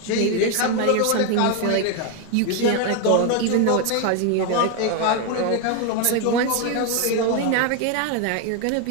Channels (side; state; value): both; different; correlation 0.01